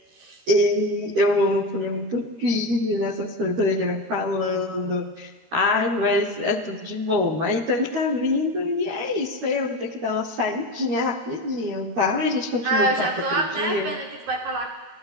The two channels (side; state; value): left; late; 13 ms